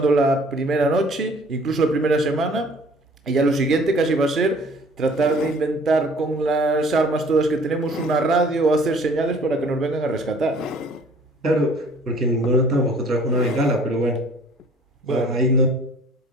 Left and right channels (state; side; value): normal; both; correlation 0.53